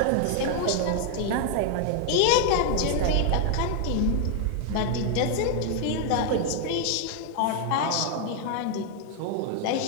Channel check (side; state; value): both; different; correlation 0.00